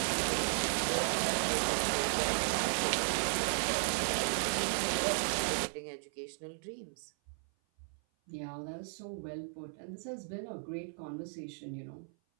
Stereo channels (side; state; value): left; silent; 54 dB below the other